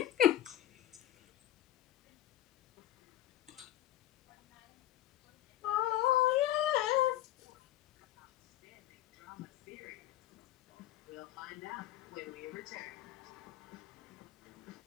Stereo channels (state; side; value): quieter; right; 13.5 dB